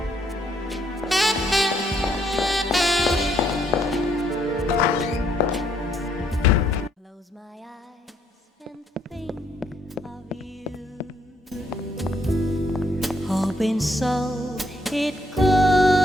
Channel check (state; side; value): normal; both; correlation 0.71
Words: Hoping so it